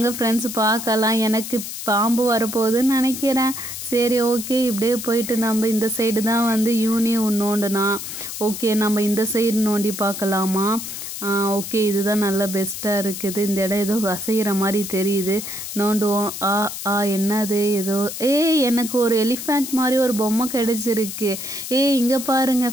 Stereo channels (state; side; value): noise; left; hiss, 8 dB below the sound